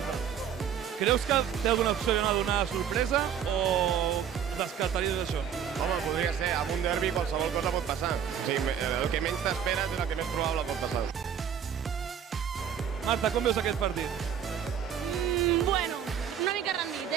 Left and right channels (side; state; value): left; quieter; 8.6 dB